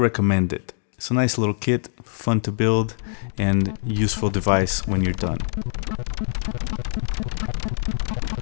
it. It's a nice little kit, fun to build, and useful device when you're done.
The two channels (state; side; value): silent; right; digital silence